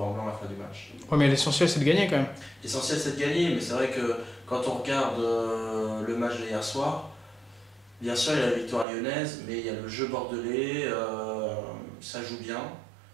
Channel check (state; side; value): drops out; left; at 8.8 s